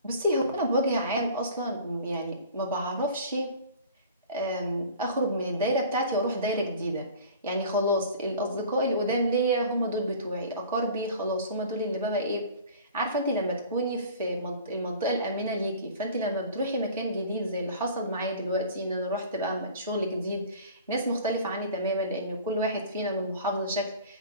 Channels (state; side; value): inverted; both; correlation -0.43